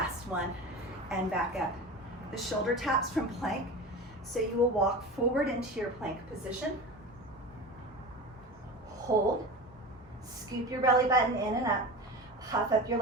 one, and back up. The shoulder taps from plank, so you will walk forward into your plank position. Hold, scoop your belly button in and up, puff up your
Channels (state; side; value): normal; both; correlation 0.30